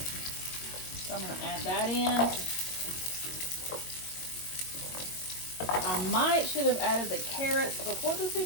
So I'm gonna add that in. I should have added the carrots before the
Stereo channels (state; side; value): late; right; 22 ms